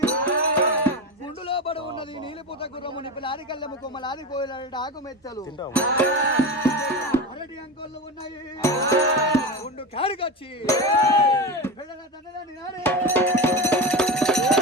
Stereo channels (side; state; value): both; normal; correlation 0.22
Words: గుండులో పడి ఉన్నది నీలిపుత గుర్రము నిపిలాది కళ్ళెము కొమ్మలాది కోయిలాడి ఆకు మెత్తలు అరటి అంకోళ్ళు ఉన్నాయి గుండు కాడికొచ్చి పిల్లల తండ్రి నాడే